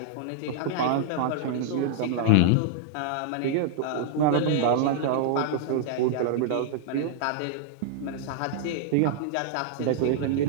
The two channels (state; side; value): different; both; correlation -0.01